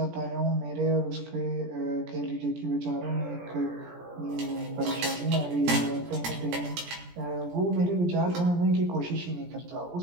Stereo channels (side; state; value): left; late; 17 ms